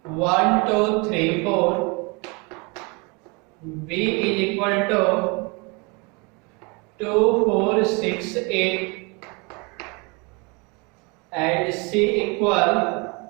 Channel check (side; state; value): left; quieter; 29.7 dB